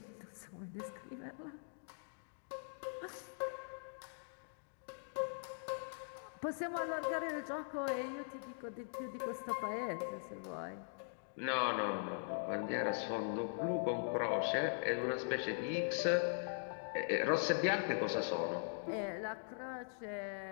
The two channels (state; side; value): silent; right; digital silence